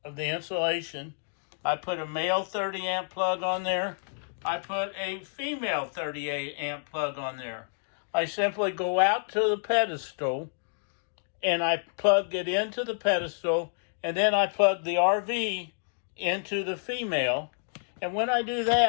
of the insulation. I put a male 30 amp plug on there. I put a female 38 amp plug on there. I simply go out to the pedestal and I plug it into the pedestal, and then I plug the RV into the female. And when I do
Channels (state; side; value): silent; right; digital silence